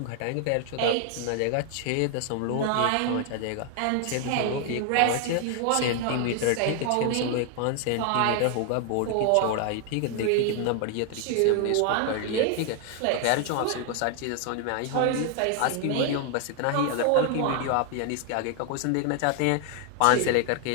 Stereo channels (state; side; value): different; both; correlation 0.00